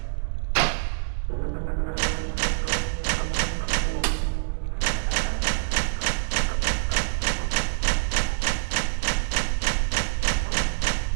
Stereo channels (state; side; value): silent; left; 61 dB below the other